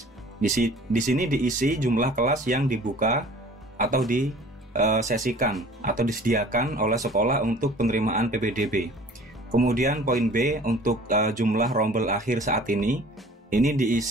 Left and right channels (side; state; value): both; normal; correlation 0.48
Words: Di sini diisi jumlah kelas yang dibuka atau disesikan atau disediakan oleh sekolah untuk penerimaan PPDB. Kemudian poin B untuk jumlah rombel akhir saat ini